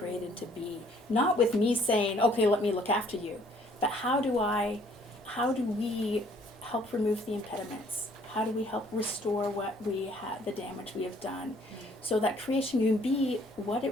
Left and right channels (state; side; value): normal; both; correlation 0.61